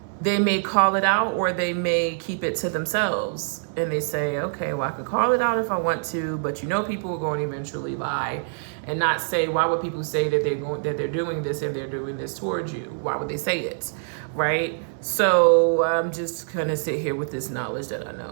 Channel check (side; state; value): left; silent; 62 dB below the other